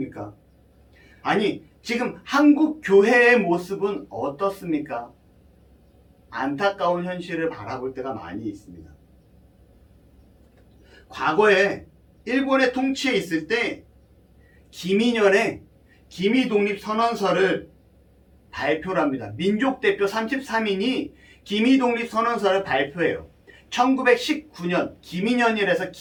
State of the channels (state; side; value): identical; both; correlation 1.00